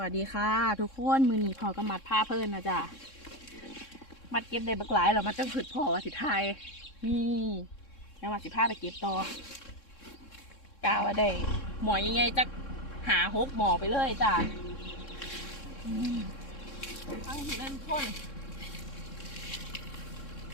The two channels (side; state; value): right; late; 3.6 ms